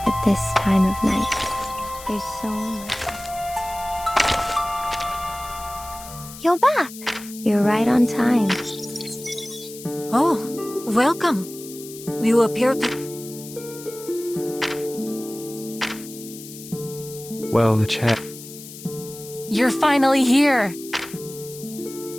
at this time of night. There's so much. You're back. You're right on time. Oh, welcome. You appear to... Well, the chat. You're finally here.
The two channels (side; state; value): left; noise; hiss, 15 dB below the sound